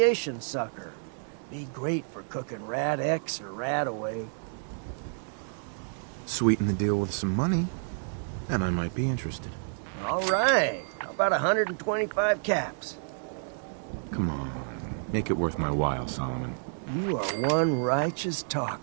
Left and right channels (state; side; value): silent; left; digital silence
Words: sucker. Be great for cooking rat X or rat away. Sweeten the deal with some money, and I might be interested. All right. How about 125 caps? Come on. Make it worth my while, Solomon. You are one righteous